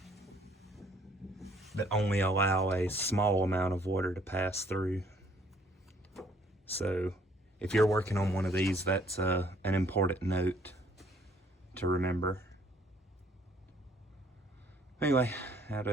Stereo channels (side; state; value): both; normal; correlation 0.62